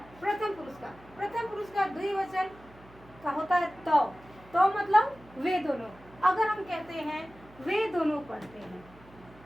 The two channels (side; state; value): right; noise; hum, 24 dB below the sound